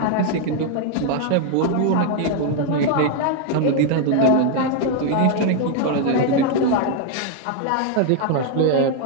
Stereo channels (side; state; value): both; different; correlation 0.00